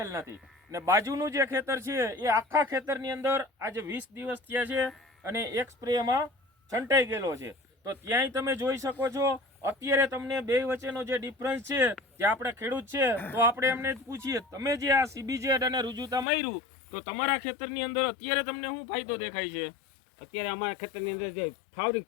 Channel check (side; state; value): right; drops out; at 16.2 s